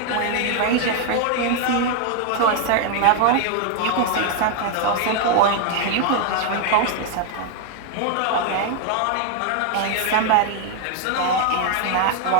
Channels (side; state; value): both; different; correlation 0.00